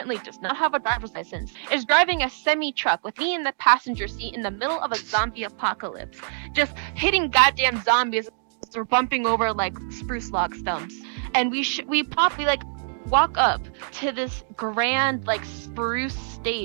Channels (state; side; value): silent; left; digital silence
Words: does not have a driver's license, is driving a semi truck with me in the passenger seat in the middle of a zombie apocalypse, just hitting goddamn zombies as we're bumping over like spruce log stumps. And we like walk up to this grand like spruce